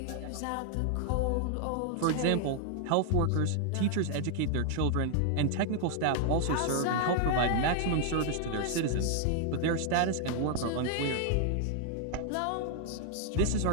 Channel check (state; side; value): different; both; correlation 0.00